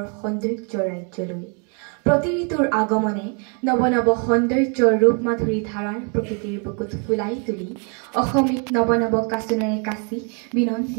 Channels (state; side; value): quieter; left; 38.1 dB